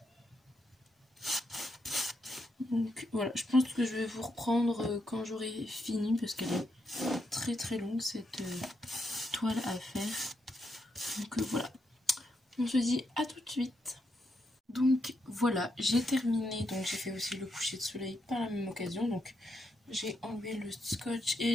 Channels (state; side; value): normal; both; correlation 0.81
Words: Donc voilà, je pense que je vais vous reprendre quand j'aurai fini, parce qu'elle est très longue cette toile à faire. Donc voilà, on se dit à tout de suite. Donc voilà, j'ai terminé, donc j'ai fait aussi le coucher de soleil par la même occasion. Donc j'ai enlevé le scotch